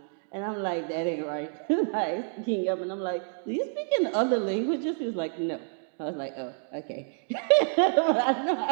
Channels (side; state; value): left; silent; 59 dB below the other